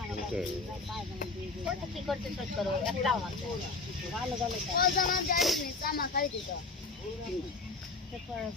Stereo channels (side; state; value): right; quieter; 3.9 dB